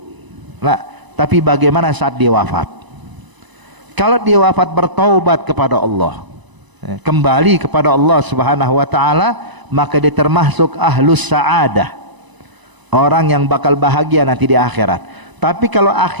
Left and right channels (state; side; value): late; left; 1.0 ms